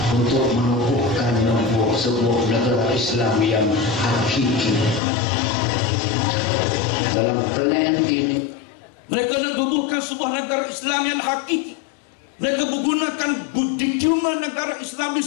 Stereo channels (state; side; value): drops out; right; at 5.0 s